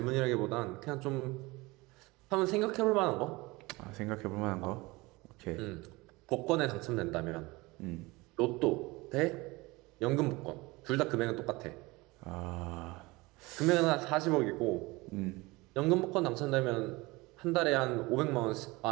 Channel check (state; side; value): quieter; left; 22.7 dB